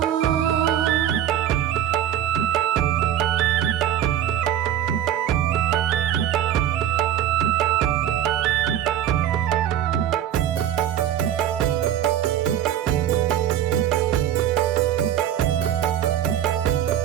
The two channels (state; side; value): quieter; left; 10.8 dB